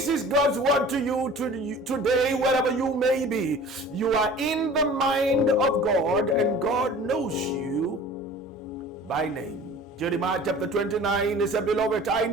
is God's word to you today, wherever you may be. You are in the mind of God, and God knows you by name. Jeremiah chapter 29 is, Beloved, I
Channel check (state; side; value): normal; both; correlation 0.44